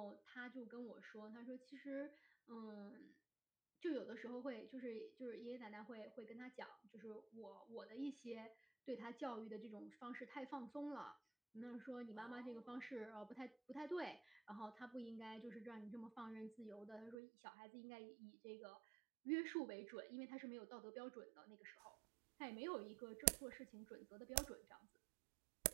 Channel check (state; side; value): drops out; left; at 17.2 s